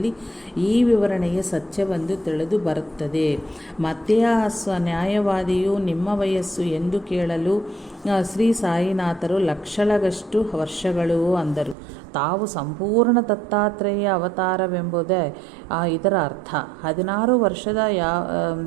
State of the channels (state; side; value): drops out; left; at 11.8 s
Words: ಈ ವಿವರಣೆಯ ಸತ್ಯವೊಂದು ತಿಳಿದು ಬರುತ್ತದೆ. ಮತ್ತೆ ಆ ನ್ಯಾಯವಾದಿಯು ನಿಮ್ಮ ವಯಸ್ಸು ಎಂದು ಕೇಳಲು ಶ್ರೀ ಸಾಯಿನಾಥರು ಲಕ್ಷಲಗಷ್ಟು ವರ್ಷಗಳು ಅಂದರು. ತಾವು ಸಂಪೂರ್ಣ ದತ್ತಾತ್ರೇಯ ಅವತಾರವೆಂಬುದೇ ಇದರ ಅರ್ಥ. 16 ವರ್ಷದ